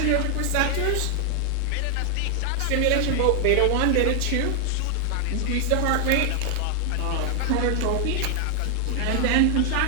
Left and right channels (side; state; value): both; different; correlation 0.00